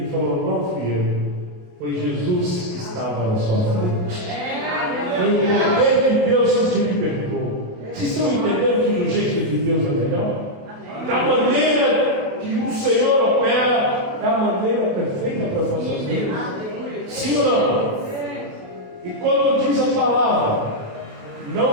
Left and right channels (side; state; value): left; late; 28 ms